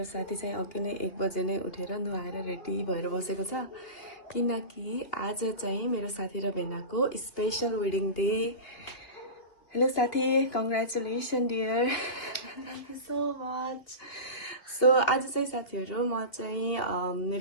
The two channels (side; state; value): right; late; 2.6 ms